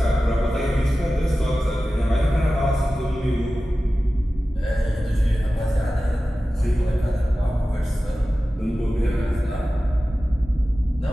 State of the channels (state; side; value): normal; both; correlation 0.95